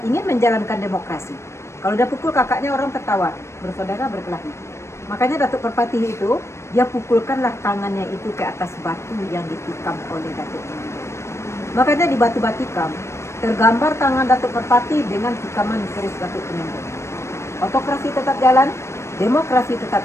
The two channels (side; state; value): right; late; 0.13 ms